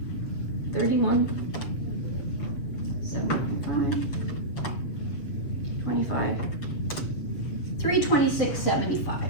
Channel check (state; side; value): late; right; 7.5 ms